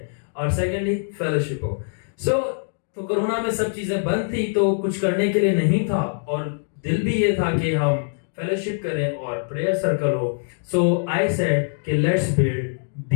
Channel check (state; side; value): silent; right; digital silence